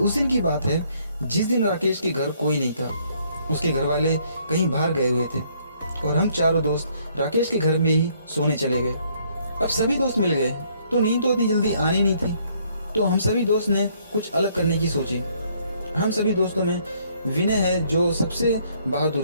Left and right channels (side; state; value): both; inverted; correlation -0.66